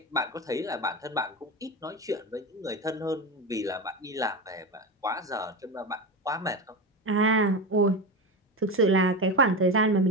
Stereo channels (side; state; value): both; normal; correlation 0.20